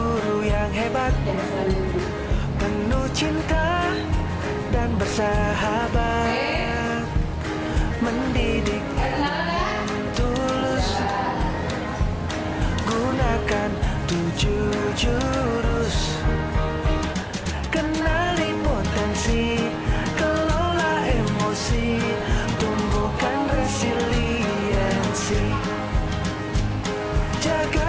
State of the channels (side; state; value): both; identical; correlation 1.00